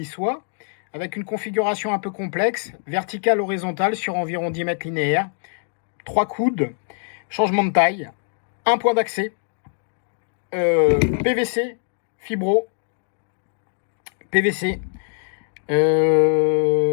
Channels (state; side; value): silent; right; 63 dB below the other